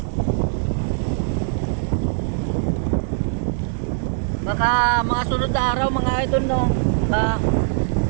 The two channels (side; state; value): left; silent; digital silence